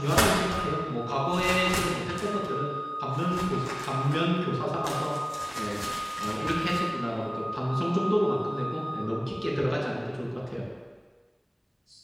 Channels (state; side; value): identical; both; correlation 1.00